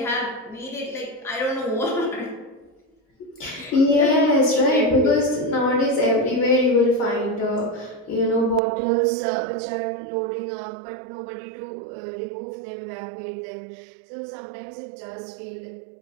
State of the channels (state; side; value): drops out; left; at 8.6 s